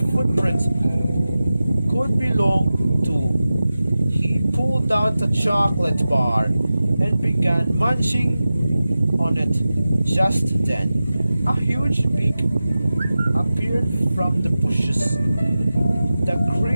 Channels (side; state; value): both; inverted; correlation -0.95